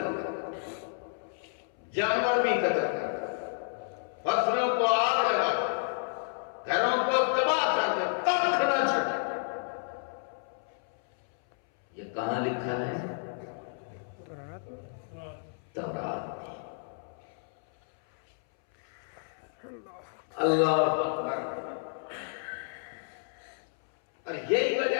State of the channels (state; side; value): silent; right; 57 dB below the other